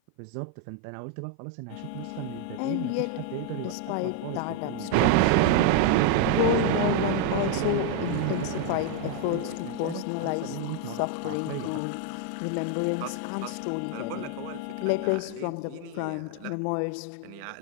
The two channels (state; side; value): different; both; correlation 0.00